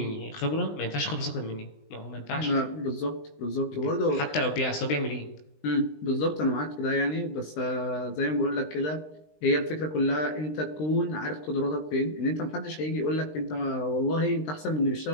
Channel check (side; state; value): right; late; 20 ms